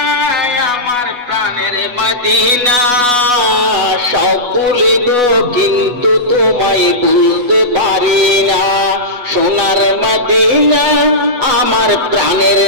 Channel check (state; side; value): late; left; 8.2 ms